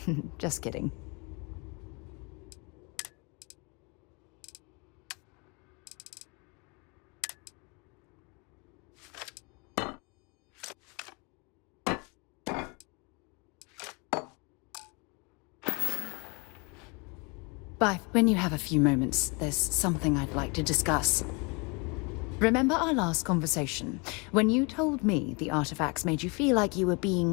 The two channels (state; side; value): quieter; right; 30.8 dB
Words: Just kidding. Bye. When you have a few moments, there's something I'd like to discuss. Remember our last conversation, when you told me the artifacts made you feel like you were